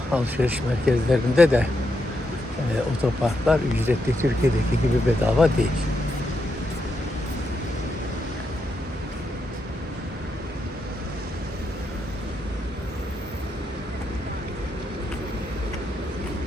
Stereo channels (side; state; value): both; normal; correlation 0.82